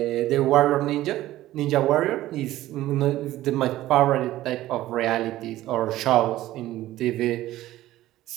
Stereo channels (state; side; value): quieter; left; 15.2 dB